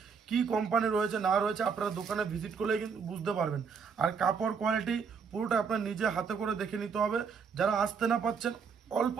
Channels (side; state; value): left; quieter; 6.0 dB